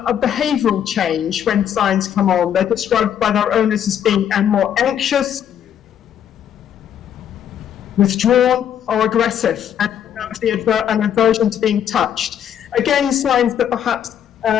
behavioral change when signs come on. They're described by their owners as being more anxious, withdrawn, or aggressive, and an aversion to being touched. Again, signs that perhaps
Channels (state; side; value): quieter; right; 9.4 dB